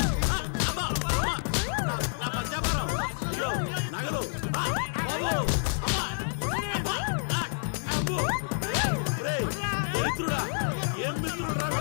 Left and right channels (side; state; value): right; silent; digital silence